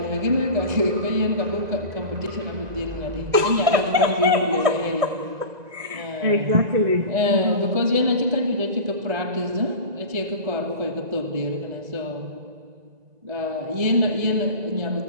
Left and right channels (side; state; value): left; late; 2.0 ms